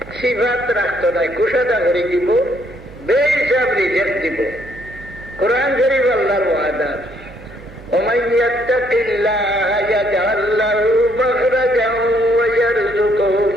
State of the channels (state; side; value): noise; right; hum, 18 dB below the sound